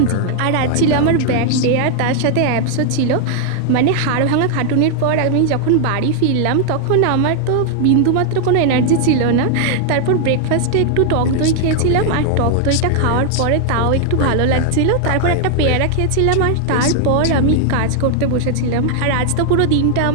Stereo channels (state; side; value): different; both; correlation 0.00